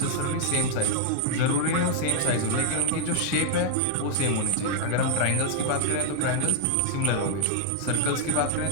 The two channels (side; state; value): both; different; correlation 0.00